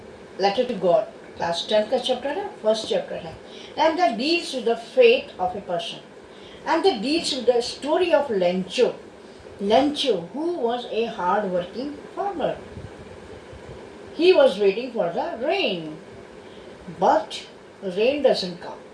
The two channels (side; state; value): both; identical; correlation 1.00